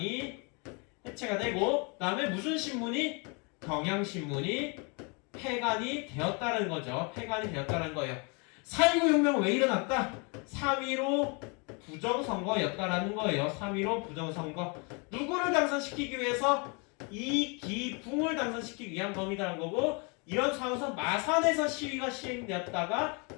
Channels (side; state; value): right; quieter; 32.7 dB